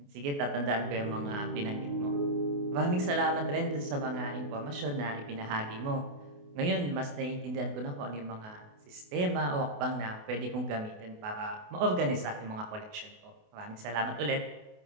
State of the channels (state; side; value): late; left; 28 ms